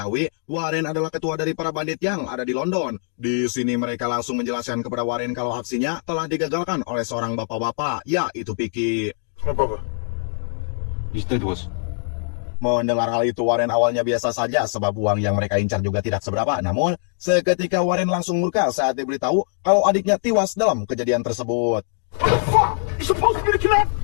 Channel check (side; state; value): right; silent; digital silence